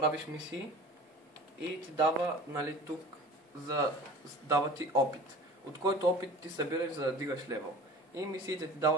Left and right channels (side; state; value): both; normal; correlation 0.41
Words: мисии и ти дава, нали, тук, дава ти опит, от който опит ти събираш, за да дигаш левел. И мисиите ти